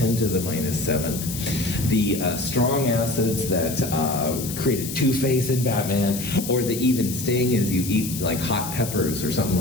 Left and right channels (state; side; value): noise; left; hiss, 8 dB below the sound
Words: to the minus 7th. The strong acids that created Two-Face in Batman, or the even sting as you eat like hot peppers or something